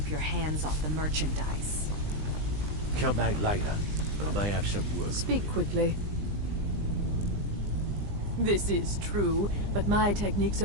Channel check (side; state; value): left; late; 20 ms